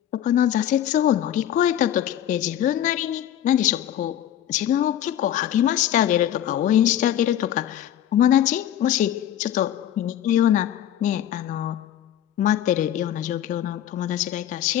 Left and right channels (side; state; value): right; quieter; 11.1 dB